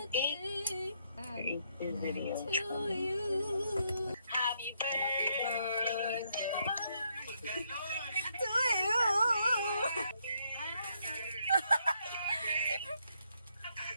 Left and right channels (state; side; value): inverted; both; correlation -0.75